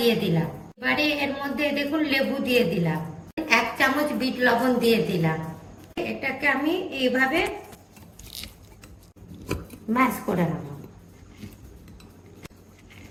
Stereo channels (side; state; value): both; identical; correlation 1.00